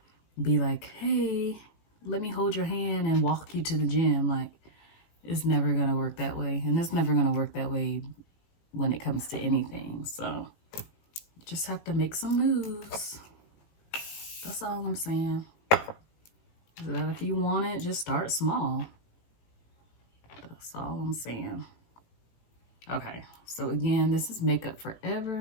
be like, hey, let me hold your hand and walk you to the gym. Like, it's never gonna work that way. And it's never gonna work that way when it comes to anything. So just have to make some moves. That's all I'm saying. That if you want it, just start small. That's all I'm saying. Okay, so again, this is Makeup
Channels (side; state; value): right; late; 18 ms